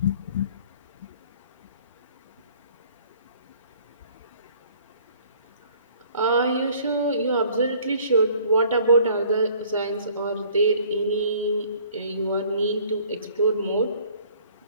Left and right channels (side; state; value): both; inverted; correlation -0.55